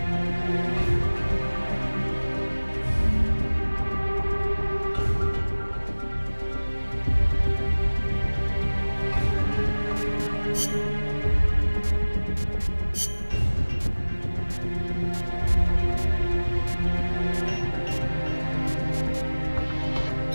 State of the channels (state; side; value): inverted; both; correlation -1.00